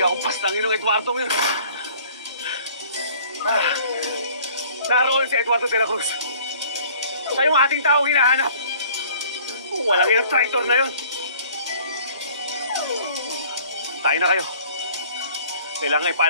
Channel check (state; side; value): inverted; both; correlation -0.53